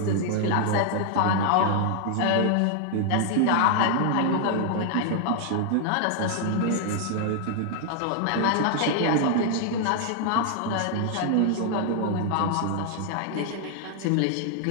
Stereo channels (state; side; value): different; both; correlation 0.00